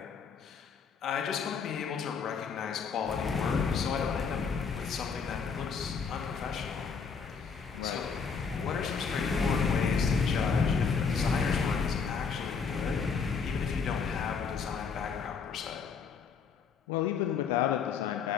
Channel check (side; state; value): right; quieter; 5.8 dB